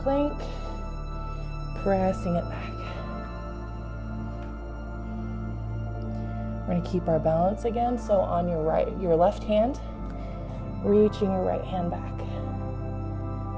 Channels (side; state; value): both; identical; correlation 1.00